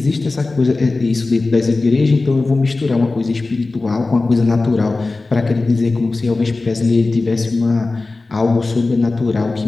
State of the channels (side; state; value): right; quieter; 3.4 dB